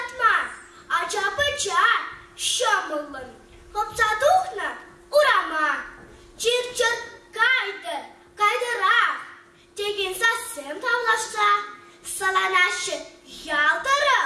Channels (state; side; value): identical; both; correlation 1.00